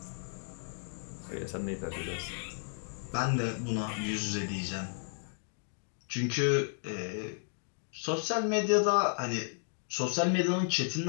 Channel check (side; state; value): right; silent; digital silence